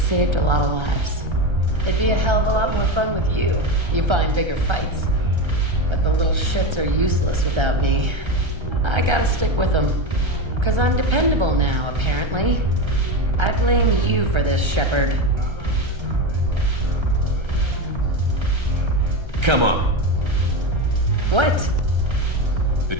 a lot of lives. It'd be a hell of a lot more fun with you. You find bigger fights. But the little shits are useless without me. I gotta stick with them. 'Cause I'm dependable now, apparently. I blame you for this, Shepard. Come on. What? The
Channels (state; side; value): late; left; 1.3 ms